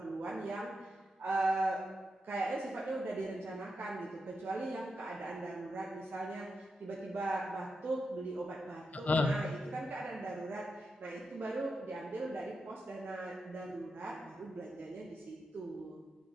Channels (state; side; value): normal; both; correlation 0.87